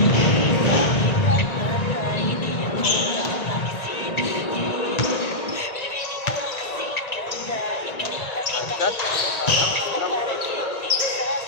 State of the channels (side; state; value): right; late; 1.8 ms